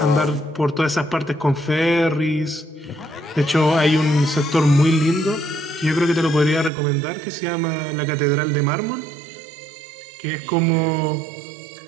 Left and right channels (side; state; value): left; drops out; at 6.7 s